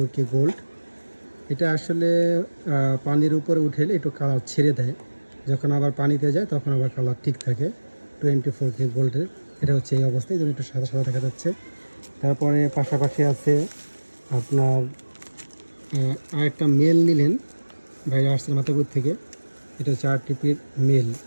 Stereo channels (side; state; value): both; inverted; correlation -1.00